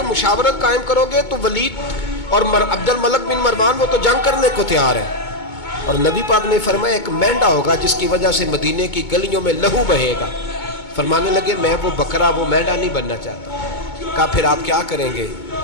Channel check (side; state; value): right; late; 2.2 ms